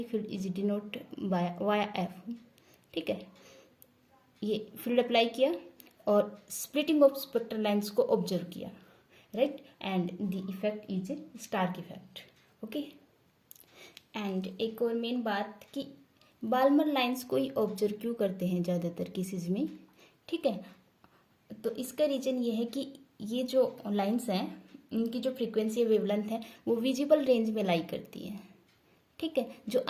field is denote by via F, ठीक है. ये फील्ड अप्लाई किया और स्प्लिटिंग ऑफ स्पेक्ट्रल लाइंस को ऑब्जर्व किया, right. And the effect is Stark effect, okay. And एक और मेन बात कि बाल्मर लाइंस को ही ऑब्जर्व क्यों करते हैं ज़्यादातर केसेस में, ठीक है. तो इसका रीज़न ये है कि ये जो लाइंस हैं इनकी जो फ्रीक्वेंसी वेवलेंथ है वो विजिबल रेंज में लाई करती है, ठीक है, जो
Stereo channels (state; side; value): identical; both; correlation 1.00